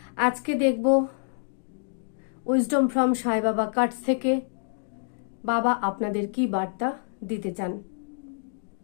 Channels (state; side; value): silent; right; digital silence